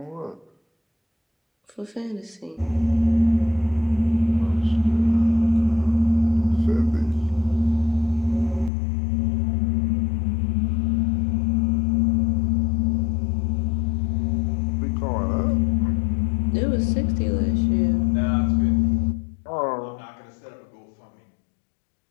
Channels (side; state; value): right; drops out; at 8.7 s